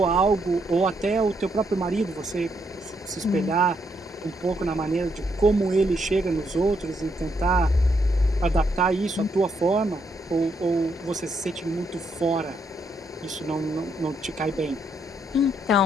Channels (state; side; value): normal; both; correlation 0.76